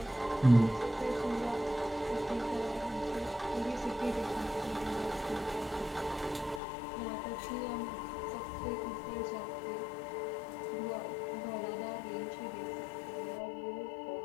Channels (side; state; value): right; drops out; at 6.6 s